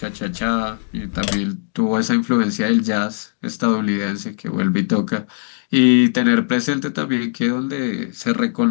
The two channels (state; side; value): silent; right; digital silence